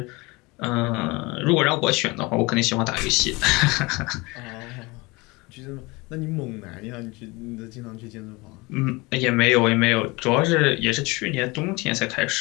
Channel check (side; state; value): right; quieter; 24.5 dB